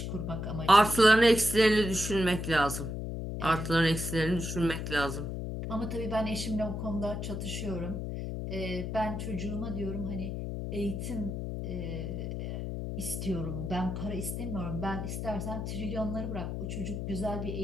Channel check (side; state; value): left; noise; hum, 4 dB below the sound